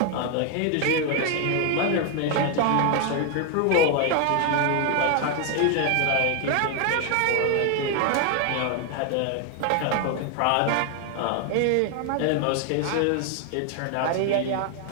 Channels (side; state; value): both; different; correlation 0.00